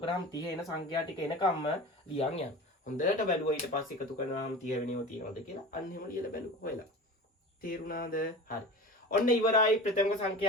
කරාම 30 එන සංඛ්‍යා ටික එනකම්ම ලියන් යනවා. හොඳට බැලුවා ඊට පස්සේ එකතු කරාම 30 වෙනව තියෙනවද කියලා අන්න එහෙම ලියලා බැලුවා හොයලා. තේරුණාද? හරි. ඔන්න ඉවරයි ප්‍රථම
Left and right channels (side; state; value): both; normal; correlation 0.34